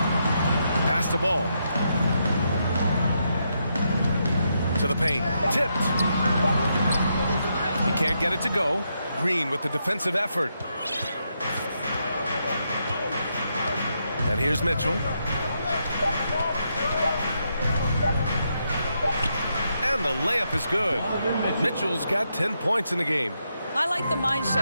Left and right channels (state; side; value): inverted; both; correlation -0.81